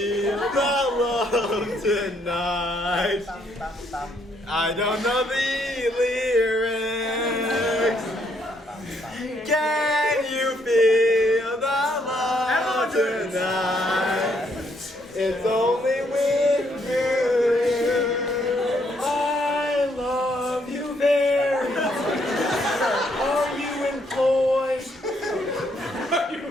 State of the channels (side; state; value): both; normal; correlation 0.72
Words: the love tonight? I don't know the lyrics. Can you feel the love tonight? It's only with you. I love you very much. Are you employed?